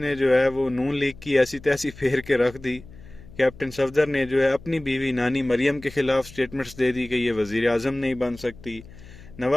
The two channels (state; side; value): noise; left; hum, 19 dB below the sound